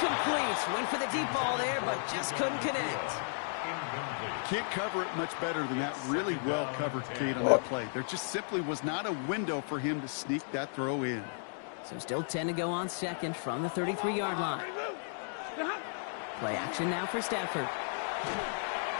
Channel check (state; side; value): silent; right; digital silence